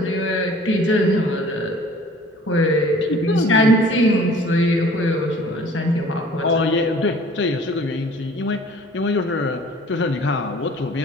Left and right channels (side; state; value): both; normal; correlation 0.50